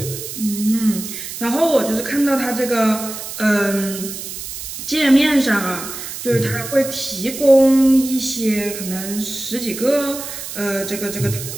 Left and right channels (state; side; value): noise; right; hiss, 9 dB below the sound